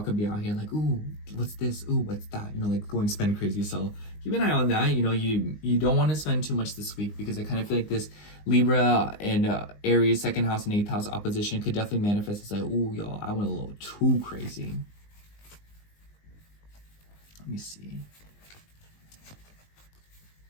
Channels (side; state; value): right; late; 19 ms